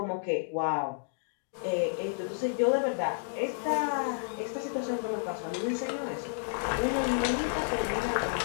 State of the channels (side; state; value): right; silent; digital silence